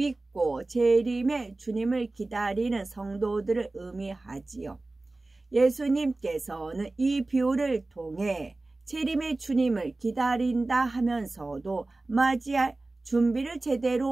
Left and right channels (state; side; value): quieter; left; 3.1 dB